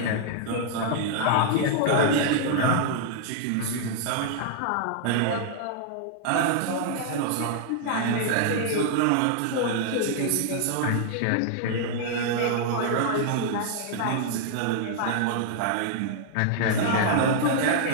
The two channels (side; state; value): both; different; correlation -0.01